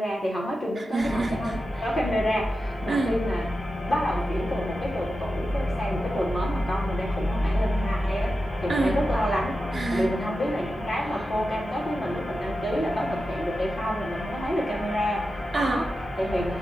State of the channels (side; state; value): both; normal; correlation 0.91